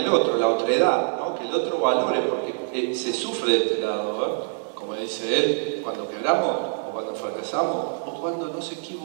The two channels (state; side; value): silent; left; digital silence